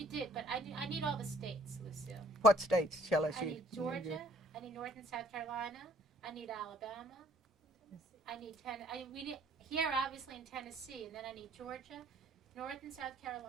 did, but I need all the states, Lucille. What states shall I I see? need Georgia, I need North and South Carolina, I need Alabama, I need here obviously in Tennessee, and then I need Georgia, North and South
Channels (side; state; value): both; normal; correlation 0.59